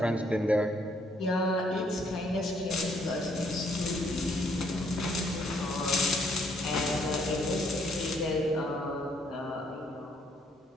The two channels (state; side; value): normal; both; correlation 0.68